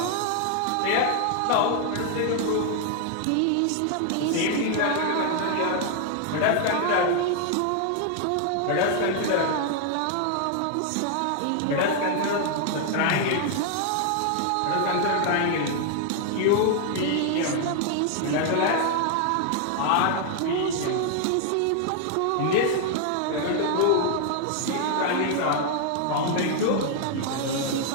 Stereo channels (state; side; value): different; both; correlation 0.00